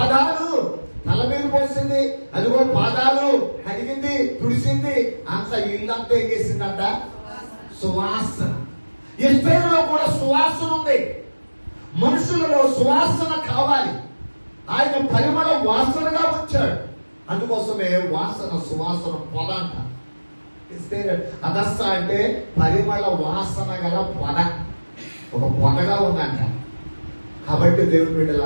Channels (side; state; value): both; inverted; correlation -1.00